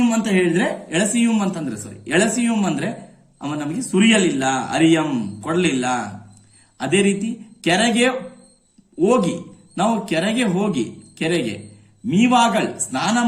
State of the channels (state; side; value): identical; both; correlation 1.00